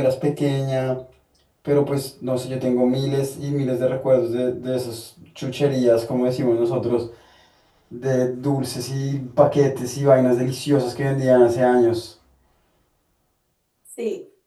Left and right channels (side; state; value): both; identical; correlation 1.00